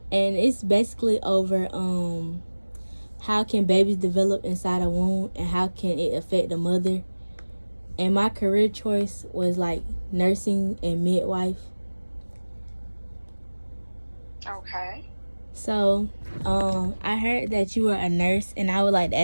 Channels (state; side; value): inverted; both; correlation -1.00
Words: and it's basically over how can babies develop inside a womb and how can it affect the mother. And my career choice was like nursing and midwife. Okay. So, I heard that you were a nurse, and I would like to